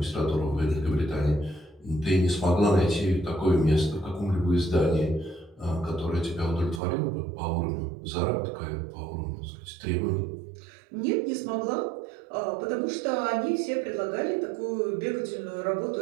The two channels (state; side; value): drops out; left; at 6.8 s